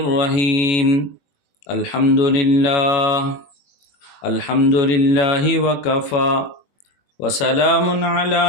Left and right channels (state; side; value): late; right; 21 ms